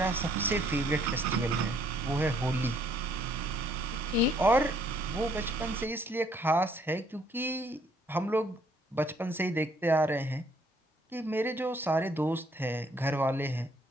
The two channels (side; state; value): both; normal; correlation 0.65